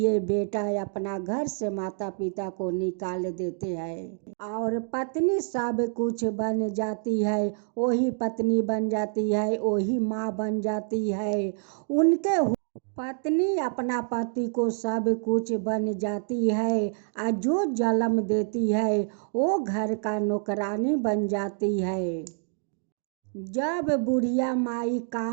बेटा अपना घर से माता पिता को निकाल देते हैं और पत्नी सब कुछ बन जाती है। वही पत्नी बन जाती है, वही माँ बन जाती है। उनके पत्नी अपना पति को सब कुछ बन जाती है और जो जन्म देती है वो घर का नौकरानी बन जाती है। जब बुढ़िया माई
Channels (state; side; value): silent; left; 58 dB below the other